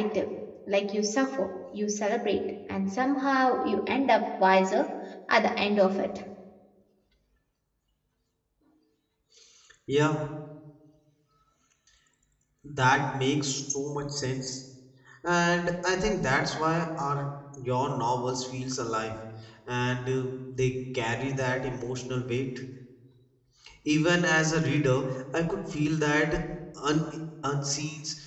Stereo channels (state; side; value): identical; both; correlation 1.00